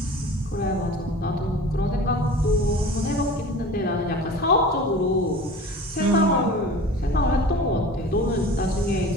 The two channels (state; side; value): normal; both; correlation 0.39